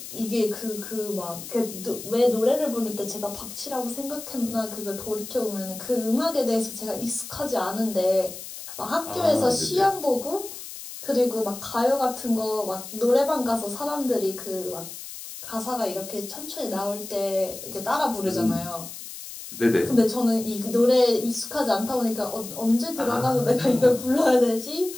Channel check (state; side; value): noise; left; hiss, 11 dB below the sound